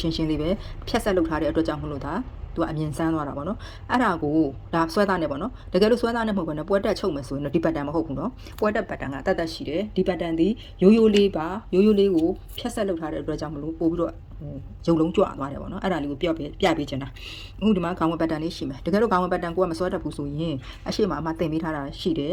ှင်းရှင်းလေးပဲဖြတ်ဆက်လောက်ထားတဲ့အတွက်ကြောင့်မလို့ဒါသူကအမြင်ဆန်းသွားတာပေါ့နော်အဲ့ဒါကိုဒါဆွဲသားနဲ့ပေါ့နော်တကယ်လို့ဆွဲသားနဲ့မဟုတ်ဘဲနဲ့ပွဲတက်ချုပ်မယ်ဆိုရင်တော့ဒီပတ်တန်မဟုတ်ဘူးနော်ပွဲတက်ပတ်တန်ကတတ်တတ်ရှိတယ်ဒီပတ်တန်ဒီရိုးရိုးလေးပါရိုးရိုးလေးကိုဖြတ်ဆက်လောက်ထားတဲ့အတွက်ကြောင့်မလို့ပို့ပြီးတော့ရုံလုံးကြွသွားတယ်ပေါ့နော်အဲ့ဒါလေးကိုပြပေးချင်တာအခုဒီမှာခေါင်းဝင်ပတ်တန်လေးရှိမယ်တကယ်လို့ခေါင်းဝင်ပတ်တန်ကိုကမစွဲတတ်ဘူးဆိုရင်အရှိမအမတင်ပေးထားတာရှိတယ်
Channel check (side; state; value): both; identical; correlation 1.00